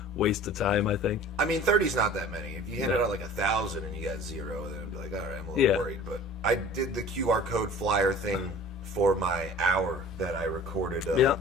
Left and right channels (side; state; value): both; normal; correlation 0.44